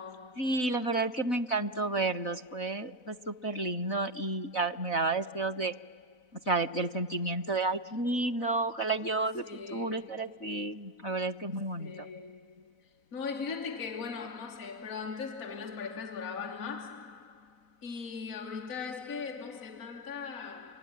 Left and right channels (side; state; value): right; late; 4.0 ms